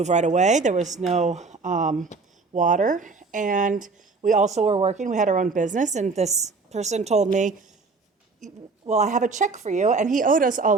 right away. There was no water, and we also were working. We had our own business, and this person told me, well, I have a check for you, and he owed us a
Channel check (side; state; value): left; quieter; 4.2 dB